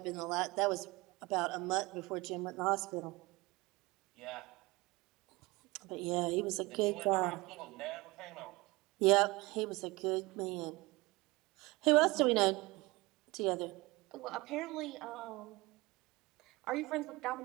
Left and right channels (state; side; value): quieter; left; 22.6 dB